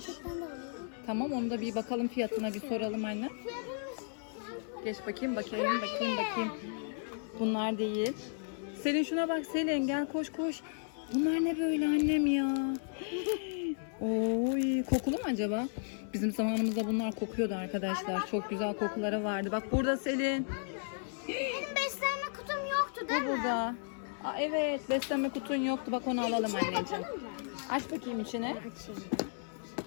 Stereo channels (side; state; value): right; silent; digital silence